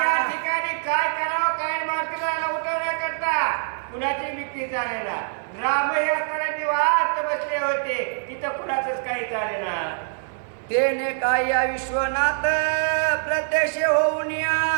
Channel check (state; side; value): silent; left; 57 dB below the other